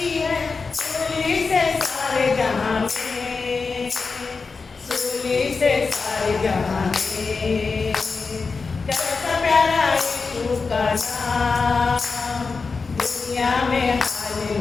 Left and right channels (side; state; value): right; quieter; 4.5 dB